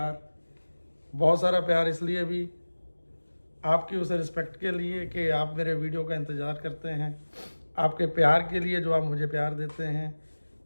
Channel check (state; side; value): inverted; both; correlation -1.00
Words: बहुत सारा प्यार। इसलिए भी आपकी उस रिस्पेक्ट के लिए कि आप मेरे वीडियो का इंतज़ार करते हैं, आपके प्यार के लिए जो आप मुझे प्यार देते हैं,